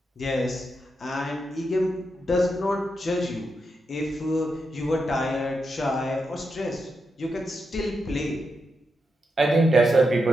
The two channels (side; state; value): both; normal; correlation 0.85